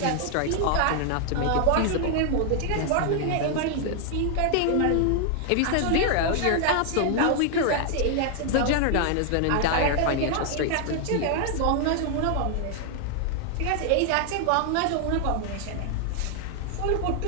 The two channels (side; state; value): both; different; correlation 0.00